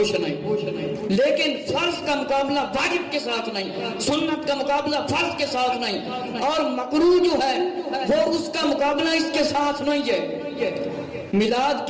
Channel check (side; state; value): both; identical; correlation 1.00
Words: نہیں. لیکن فرض کا مقابلہ واجب کے ساتھ نہیں, سنت کا مقابلہ فرض کے ساتھ نہیں, اور مکروہ جو ہے وہ اس کا مقابلہ اس کے ساتھ نہیں ہے. میلاد